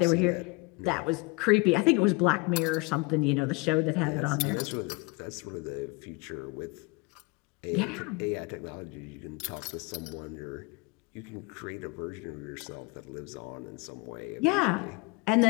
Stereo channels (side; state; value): right; quieter; 26.7 dB